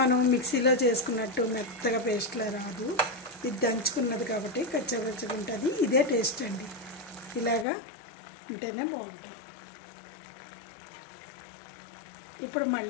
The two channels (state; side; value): drops out; right; at 7.7 s